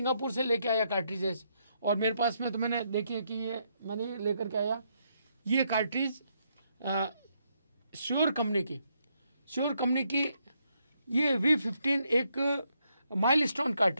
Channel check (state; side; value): inverted; both; correlation -0.76